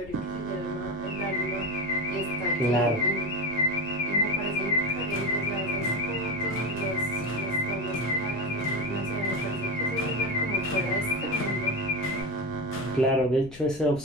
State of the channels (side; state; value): left; noise; rumble, 18 dB below the sound